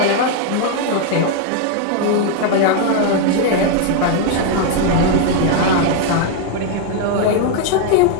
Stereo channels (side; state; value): both; different; correlation 0.00